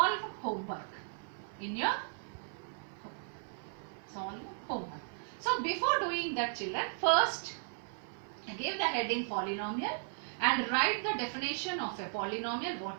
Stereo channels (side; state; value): left; silent; 54 dB below the other